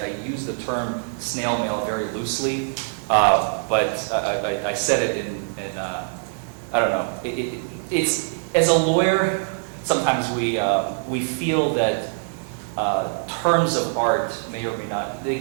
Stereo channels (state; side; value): silent; left; digital silence